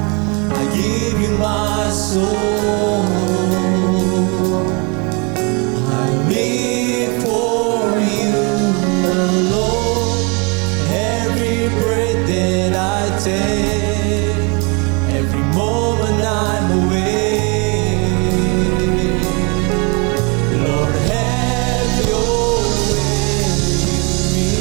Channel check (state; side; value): quieter; left; 32.0 dB